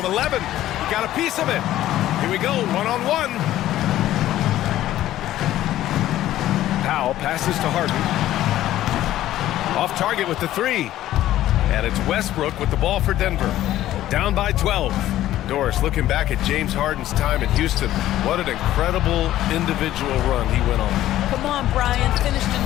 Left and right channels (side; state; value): right; quieter; 13.7 dB